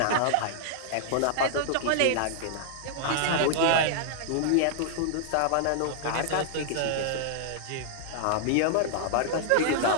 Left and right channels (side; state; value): both; different; correlation -0.01